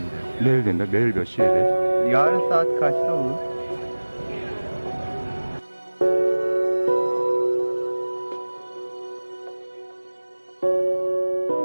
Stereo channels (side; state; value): both; inverted; correlation -1.00